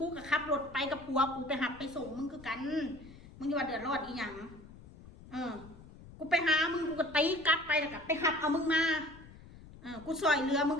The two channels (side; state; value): left; noise; rumble, 19 dB below the sound